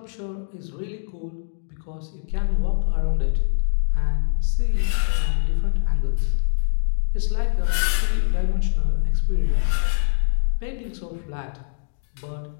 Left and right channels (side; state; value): right; silent; digital silence